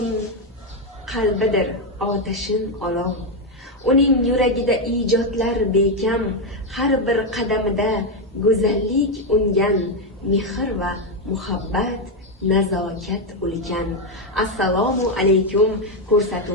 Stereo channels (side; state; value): both; normal; correlation 0.05